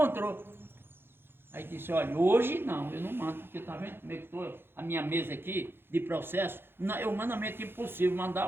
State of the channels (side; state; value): left; late; 0.10 ms